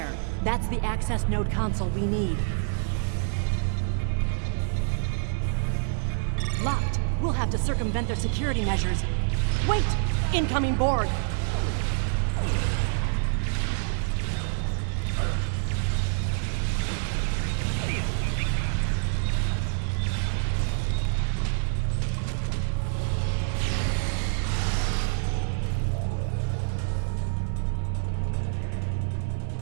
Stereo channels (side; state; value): left; silent; digital silence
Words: That's the access node console we need. Locked. We'll have to circumvent their security measures. Wait! Incoming Borg!